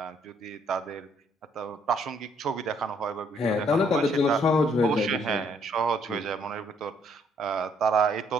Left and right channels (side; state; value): both; normal; correlation 0.67